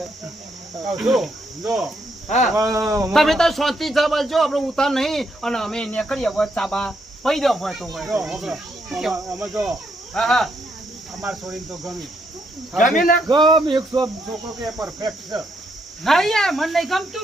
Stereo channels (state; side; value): normal; both; correlation 0.76